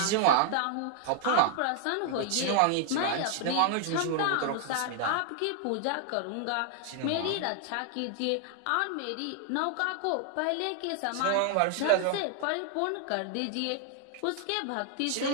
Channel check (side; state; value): both; different; correlation 0.00